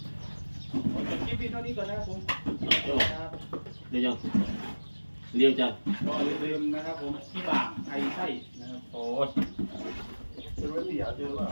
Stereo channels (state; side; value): inverted; both; correlation -1.00